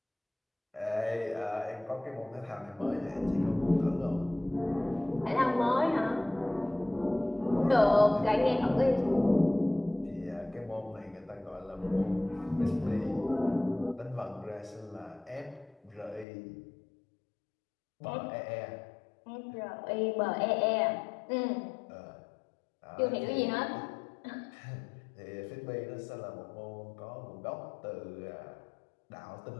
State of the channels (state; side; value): drops out; right; at 16.2 s